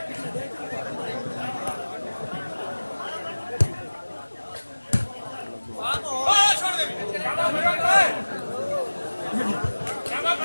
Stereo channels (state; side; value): inverted; both; correlation -1.00